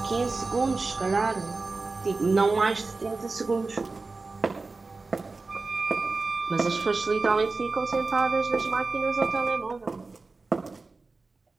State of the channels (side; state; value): left; quieter; 3.8 dB